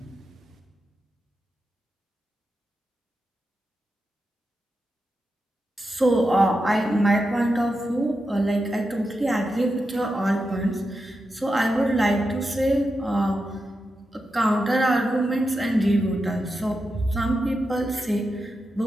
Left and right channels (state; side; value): normal; both; correlation 0.88